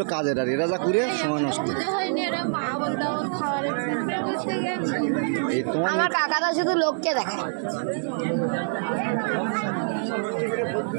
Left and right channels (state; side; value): silent; left; digital silence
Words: কাজের আর এরা যা করে সময় নষ্ট আমার কাকাটা শুধু লোককে দেখায়